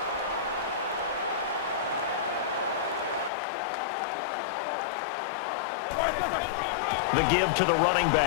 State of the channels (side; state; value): right; drops out; at 3.3 s